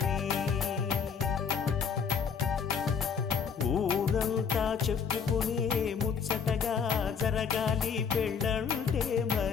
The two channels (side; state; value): right; quieter; 6.5 dB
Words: ఊరంతా చెప్పుకునే ముచ్చటగా జరగాలి పెళ్ళంటే